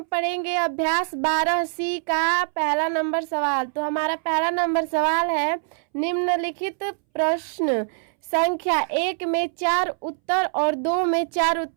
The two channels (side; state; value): left; silent; 63 dB below the other